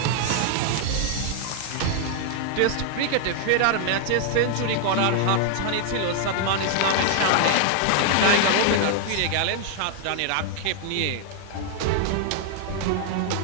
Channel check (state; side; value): different; both; correlation 0.00